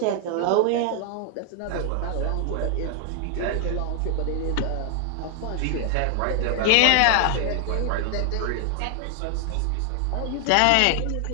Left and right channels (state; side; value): different; both; correlation 0.00